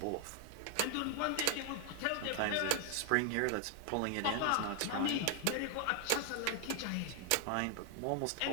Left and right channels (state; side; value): different; both; correlation 0.00